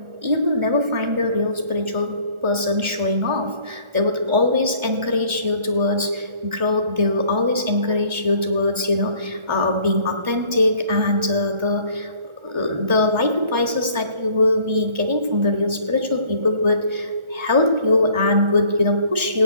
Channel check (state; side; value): late; left; 1.4 ms